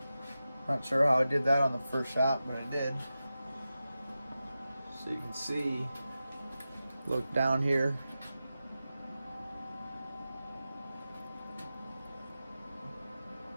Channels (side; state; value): both; inverted; correlation -0.93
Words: Not sure how I did that on the first shot, but I did. So you can see, look down here.